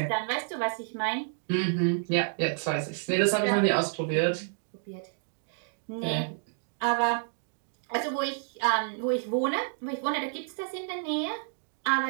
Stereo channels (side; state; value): left; silent; digital silence